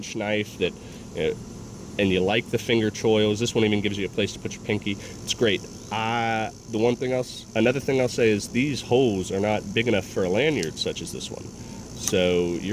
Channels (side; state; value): both; identical; correlation 1.00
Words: knife that, and you like the finger choils, this one even gives you a place to put your pinky. It's great. Another thing I'll say is these holes are not big enough for a lanyard such as this one. So